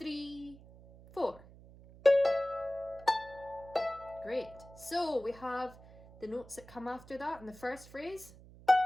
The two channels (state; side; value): noise; right; hum, 21 dB below the sound